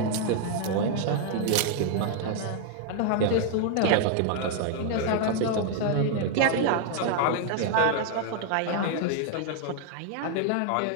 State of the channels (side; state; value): both; different; correlation 0.00